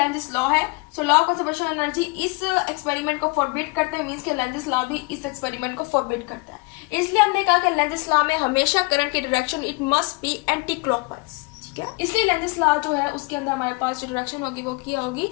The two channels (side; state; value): right; quieter; 27.8 dB